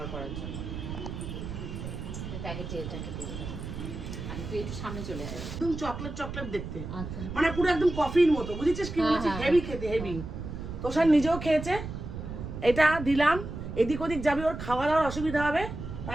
করার জন্য। প্যাকেটে এটাকে দিয়ে দেবো, আর তুই একটু সামনে চলে আসবে। একদম চকলেট দেখতে, আচ্ছা মানে পুরো একদম কফির মতো, বুঝেছিস কি বলছি, হেভি খেতে, হেভি। তো স্যার নিজেও খেয়েছে, এটা দিলাম, এদিক ওদিক যাবি, ওর খাওয়া দাওয়ার অসুবিধা হবে,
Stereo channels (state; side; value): noise; right; rumble, 7 dB below the sound